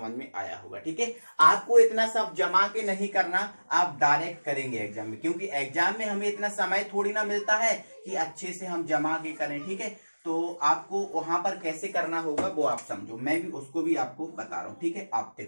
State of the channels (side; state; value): both; inverted; correlation -1.00